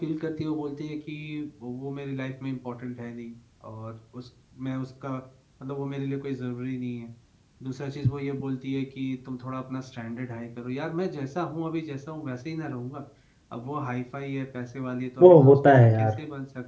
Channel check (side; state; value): both; identical; correlation 1.00